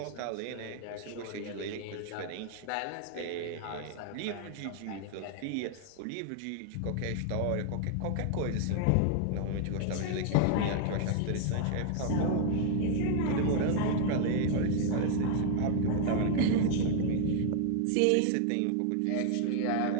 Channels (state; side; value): different; both; correlation 0.00